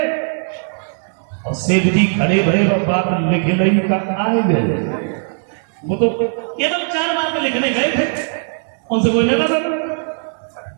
और सेठ जी खड़े भरे और बात लिखे नहीं, कहा आए गए। वो तो केवल 4 बार में लिखने गए थे, उनसे कोई लेना था,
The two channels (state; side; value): silent; left; 58 dB below the other